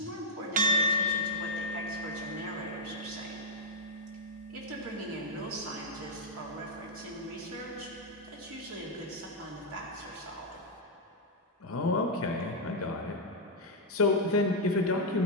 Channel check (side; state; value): both; normal; correlation -0.05